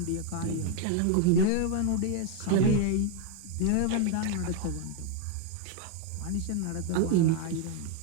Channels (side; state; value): both; different; correlation 0.00